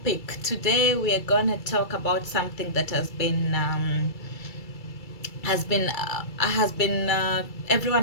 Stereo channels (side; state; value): right; late; 2.3 ms